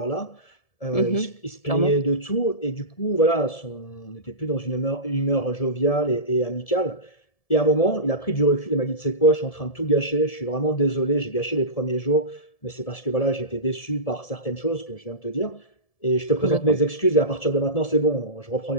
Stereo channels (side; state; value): right; late; 1.7 ms